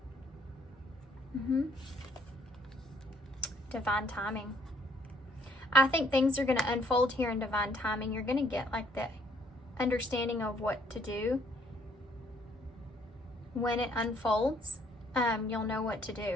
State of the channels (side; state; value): both; normal; correlation 0.64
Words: Divine timing. I think things are going to unfold here in divine timing. You're going to get like the understanding of what to do. When it unfolds, you'll know what to